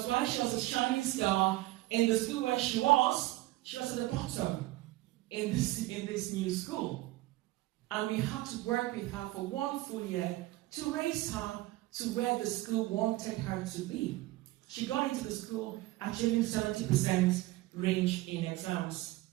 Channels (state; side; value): quieter; left; 18.3 dB